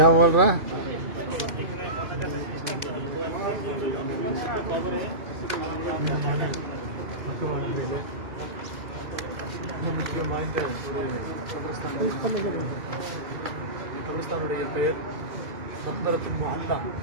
बोल रहा है? கபிரஸ்தானுடைய பெயர் மக்பரத்துல் முஅல்லா.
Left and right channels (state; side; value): late; left; 2.0 ms